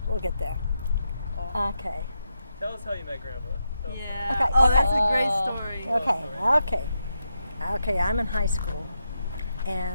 We'll get there. Okay. Tell us how you met Grandpa. Yeah. Okay, Oh, okay. that's a great story. Okay, I'm in high school,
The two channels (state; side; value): inverted; both; correlation -0.84